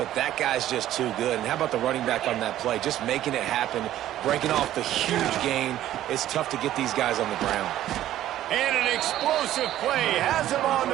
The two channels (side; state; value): left; quieter; 12.9 dB